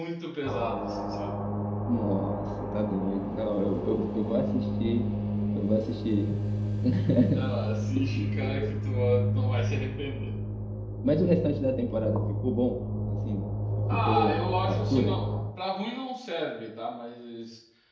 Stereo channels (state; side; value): identical; both; correlation 1.00